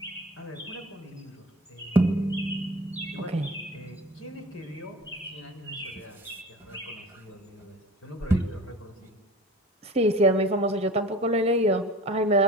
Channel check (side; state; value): both; normal; correlation 0.39